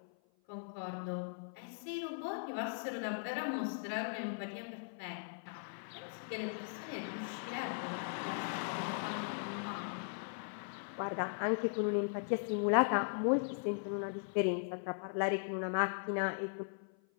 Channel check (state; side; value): silent; right; 52 dB below the other